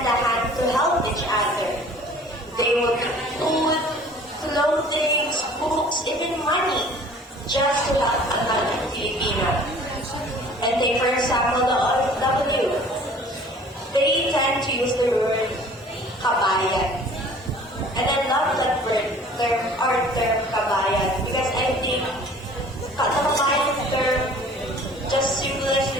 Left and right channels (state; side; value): normal; both; correlation 0.49